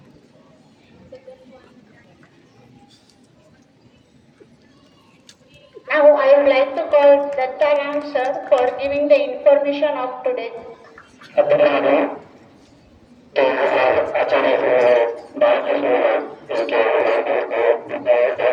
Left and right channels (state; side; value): identical; both; correlation 1.00